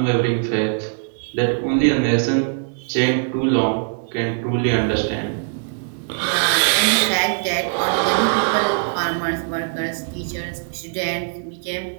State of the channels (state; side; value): silent; left; digital silence